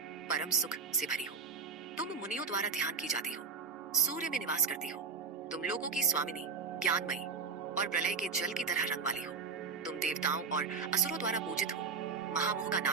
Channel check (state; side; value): quieter; left; 5.2 dB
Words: परम सुख से भरी हो। तुम मुनियों द्वारा ध्यान की जाती हो, सूर्य में निवास करती हो। तुम लोगों की स्वामिनी, ज्ञानमयी और प्रलय के जल की तरह रंग वाली हो। तुम देवताओं और असुरों द्वारा पूजित हो, महामोह का